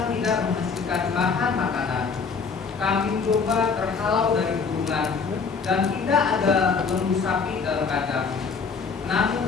tidak menghasilkan bahan makanan, kambing domba terhalau dari gurungan, dan tidak ada lembu sapi dalam kandang.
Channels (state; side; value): quieter; right; 5.3 dB